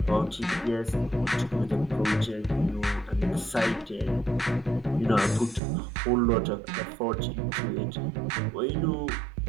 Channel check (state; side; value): drops out; left; at 5.6 s